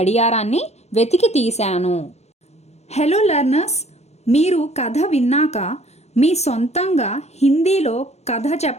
వెతికి తీశాను. హలో లర్నర్స్, మీరు కథ విన్నాక మీ సొంతంగా హిందీలో కథ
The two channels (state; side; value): late; right; 0.31 ms